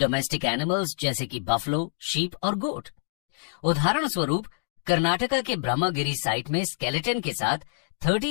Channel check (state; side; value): silent; right; digital silence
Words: एनिमल्स जैसे कि बफलो, शीप और गोट। उदाहरण स्वरूप कर्नाटका के ब्रह्मगिरी साइट में स्केलेटन के साथ